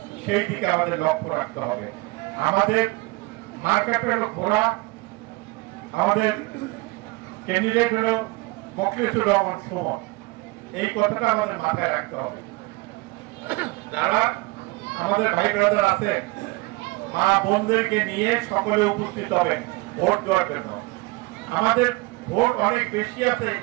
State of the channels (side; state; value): left; quieter; 23.5 dB